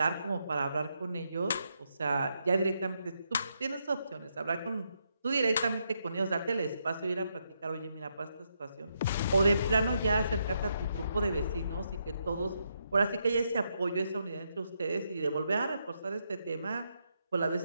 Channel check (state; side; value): inverted; both; correlation -0.80